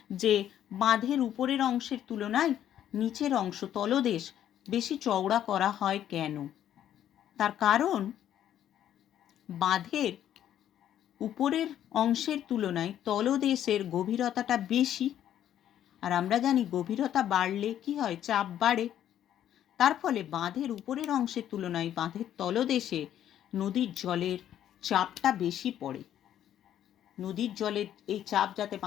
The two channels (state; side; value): quieter; right; 10.9 dB